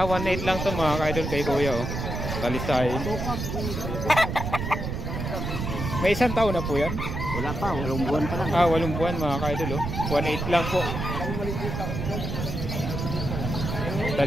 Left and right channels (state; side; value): noise; right; rumble, 4 dB below the sound